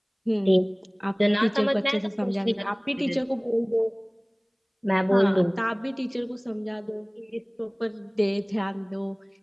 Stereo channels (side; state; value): both; identical; correlation 1.00